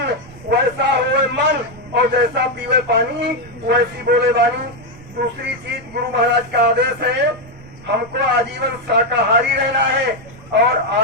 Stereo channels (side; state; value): right; noise; rumble, 21 dB below the sound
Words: वैसा होए मन, और जैसा पीवे पानी वैसी बोले वाणी। दूसरी चीज, गुरु महाराज का आदेश है हमको आजीवन शाकाहारी रहना है, और